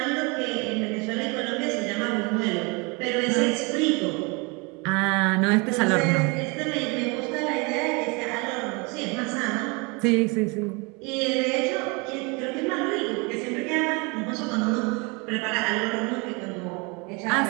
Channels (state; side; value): quieter; left; 29.4 dB